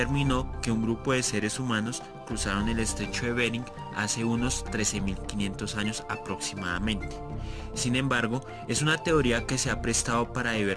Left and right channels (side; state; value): both; identical; correlation 1.00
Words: que un grupo de seres humanos cruzaron el estrecho de Bering hace unos 13.500 años aproximadamente. Sin embargo, es una teoría que se ha prestado para